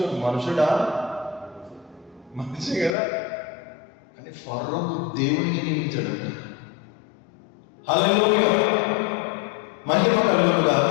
మనుషుడా? మనిషి కదా, కానీ ఫరోకు దేవునిగా నియమించాడంట. హల్లెలూయా, మహిమ కలుగును గాక.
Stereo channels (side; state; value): right; drops out; at 3.0 s